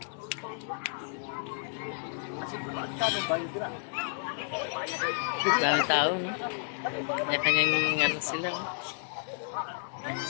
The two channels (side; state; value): right; silent; digital silence